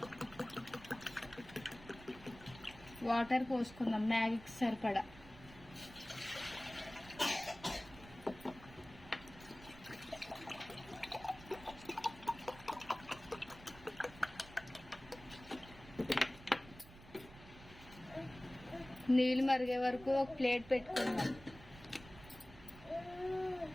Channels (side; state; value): right; noise; rumble, 18 dB below the sound